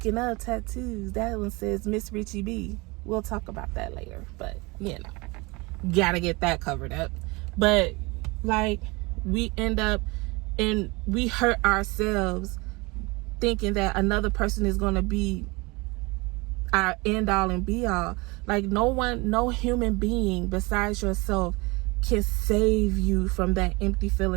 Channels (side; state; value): left; quieter; 25.4 dB